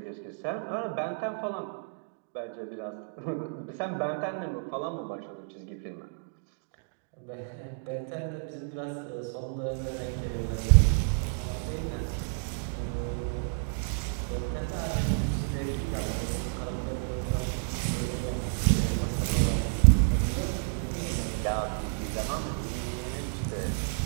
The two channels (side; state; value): left; silent; digital silence